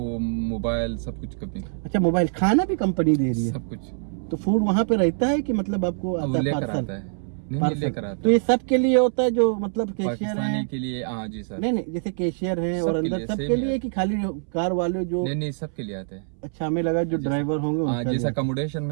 मोबाइल सब कुछ कंपनी, अच्छा, मोबाइल खाना भी कंपनी दे रही है? सब कुछ तो फूड वहाँ पे रहता है कि मतलब आपको वो आता है लेकर पार्सल? आता है। नहीं पार्सल लेकर आता तो है। ये सब के लिए होता है जो मतलब कैशियर पाकिस्तानी है? के लिए, हाँ जी सर। नहीं नहीं, जैसे कैशियर है और सबके अंदर लिए सबके same लिए है। कि खाली कार वाले जो? नहीं सबके लिए आते हैं। अच्छा, हमें लगा जो जैसा- ड्राइवर होंगे हाँ, उनका जैसा लिए। अकोमोडेशन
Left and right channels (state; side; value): silent; left; 62 dB below the other